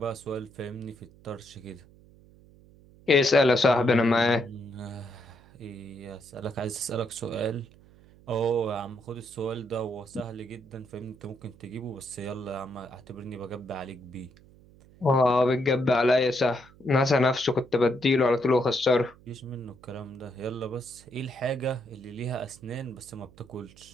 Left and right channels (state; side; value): noise; right; hum, 25 dB below the sound